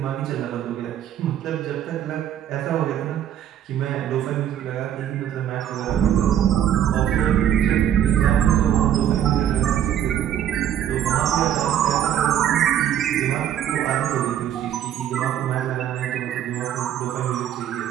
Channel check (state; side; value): quieter; left; 10.4 dB